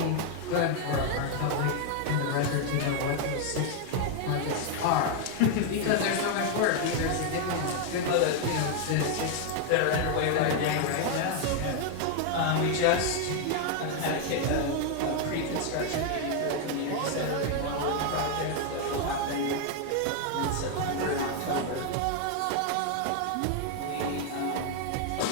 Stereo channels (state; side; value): different; both; correlation 0.00